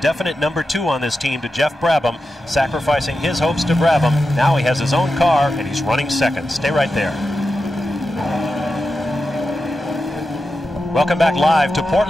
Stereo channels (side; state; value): both; normal; correlation 0.90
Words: number 2 on this team to Geoff Brabham, sacrificing his hopes to Brabham. Now he has his own car and he's running second. Stay right there. Welcome back live to